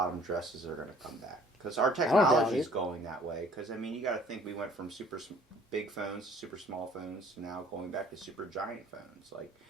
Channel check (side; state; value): both; normal; correlation 0.55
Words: dresses are going to come back. Because our technology is going that way. Because, I mean, you got to think we went from super big phones to super small phones to now going back to super giant phones. Like,